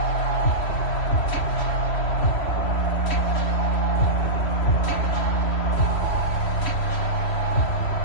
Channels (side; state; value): right; late; 3.1 ms